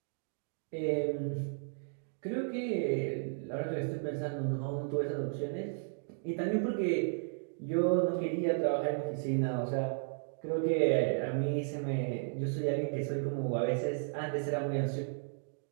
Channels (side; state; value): left; silent; digital silence